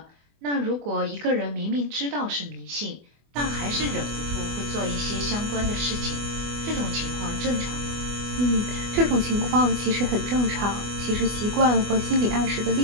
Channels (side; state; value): left; late; 24 ms